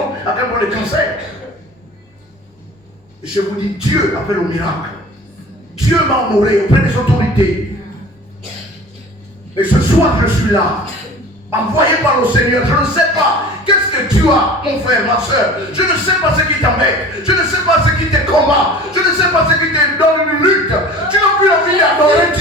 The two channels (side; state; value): both; normal; correlation 0.41